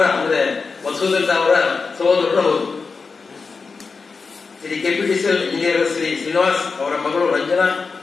ಅಂದ್ರೆ ಮಸೂದನ್ ಅವರ ಸಹೋದರರು ಹೌದು. ಶ್ರೀ ಕೆಪಿಟಿಸಿಎಲ್ ಇಂಜಿನಿಯರ್ ಶ್ರೀ ಶ್ರೀನಿವಾಸ್ ಅವರ ಮಗಳು ರಂಜನಾ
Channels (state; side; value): quieter; right; 4.7 dB